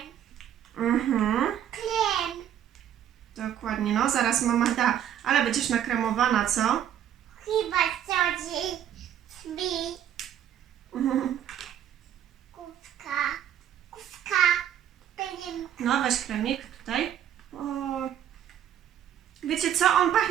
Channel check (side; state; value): left; quieter; 10.2 dB